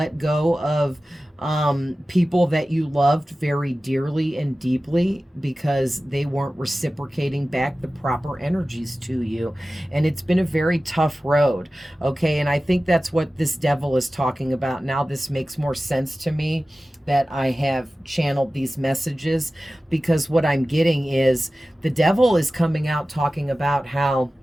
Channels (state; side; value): normal; both; correlation 0.96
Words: go of people that you loved very dearly and deeply because they weren't reciprocating back the proper energies to you. And it's been a very tough road. Okay, and I think that's what this devil is talking about. Now this makes more sense to me that I have channeled these messages, because what I'm getting is the devil is coming out talking about how